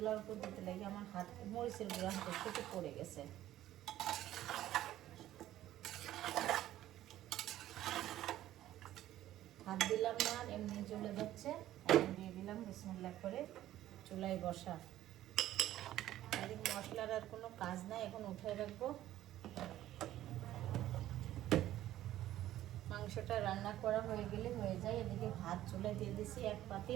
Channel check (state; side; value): quieter; left; 13.6 dB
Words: উপর দিতে লাগে। আমার হাত মরিচের গুঁড়া হাতের থেকে পড়ে গেছে। হাত দিলাম না, এমনি চলে যাচ্ছে। এখন দিয়ে দিলাম, বিসমিল্লাহ করে চুলায় বসা। আর এই মশলার আর কোনো কাজ নাই, এখন উঠায় রাখবো। মাংসটা রান্না করা হয়ে গেলে হয়ে যায়। এদিকে ভাত চুলায় দিয়ে দিছি 1